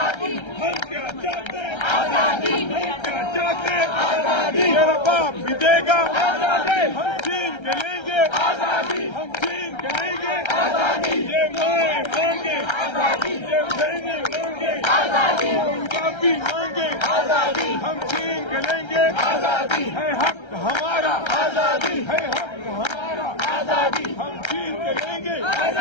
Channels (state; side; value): late; right; 1.3 ms